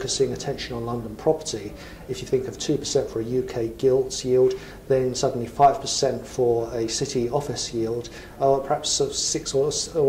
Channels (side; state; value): both; identical; correlation 1.00